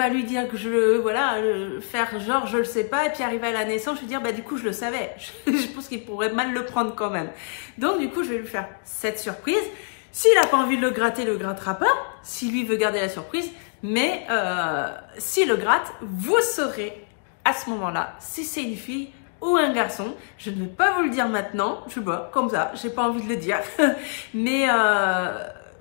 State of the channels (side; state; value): right; silent; 62 dB below the other